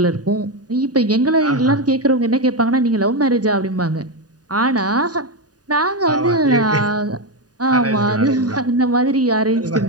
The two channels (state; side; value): late; left; 0.68 ms